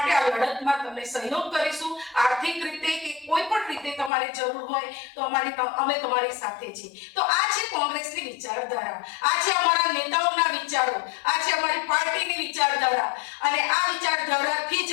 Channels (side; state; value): right; drops out; at 4.1 s